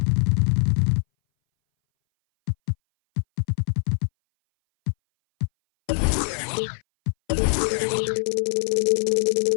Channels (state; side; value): silent; right; 60 dB below the other